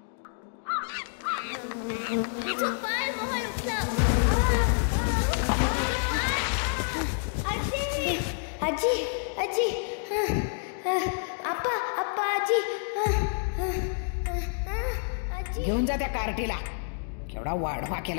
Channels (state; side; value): silent; right; digital silence